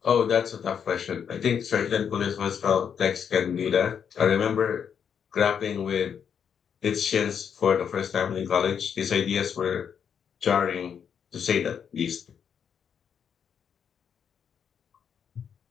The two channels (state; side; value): quieter; right; 7.6 dB